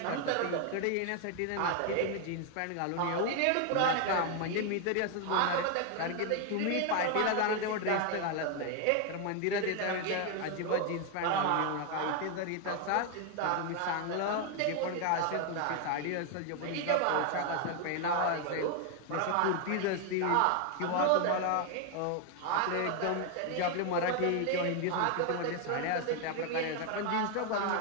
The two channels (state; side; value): different; both; correlation 0.01